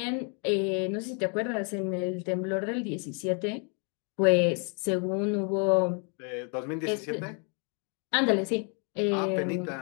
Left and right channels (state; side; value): quieter; right; 38.4 dB